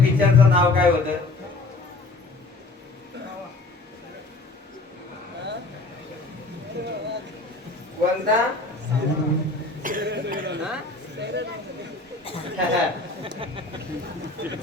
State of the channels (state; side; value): quieter; right; 3.2 dB